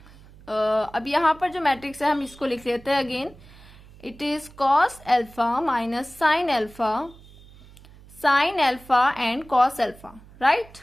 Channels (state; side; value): noise; right; hum, 22 dB below the sound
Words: अब यहाँ पर जो मैट्रिक्स है हम इसको लिख लेते हैं again. It is cos alpha minus sine alpha and cos alpha. Right,